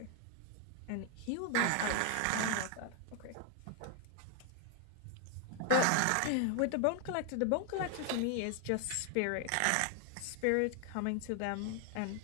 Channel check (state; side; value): different; both; correlation 0.00